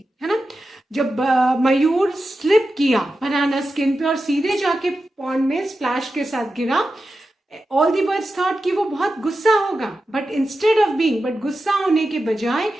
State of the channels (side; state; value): both; normal; correlation 0.91